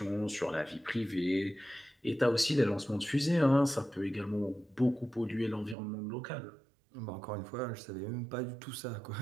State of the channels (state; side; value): drops out; left; at 5.8 s